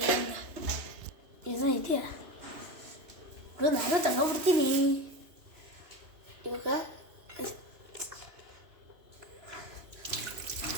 ಏನೋ ಇದೆಯಾ ನಾನು ತಗೋಬಿಡ್ತೀನಿ ಇವಾಗ.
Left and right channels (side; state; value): left; late; 3.0 ms